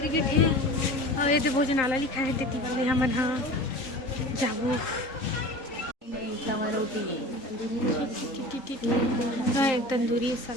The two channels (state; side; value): late; right; 3.8 ms